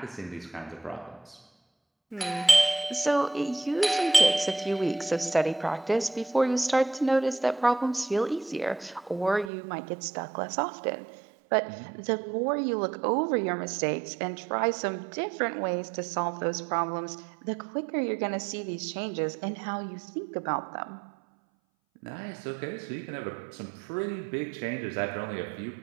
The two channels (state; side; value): drops out; left; at 9.5 s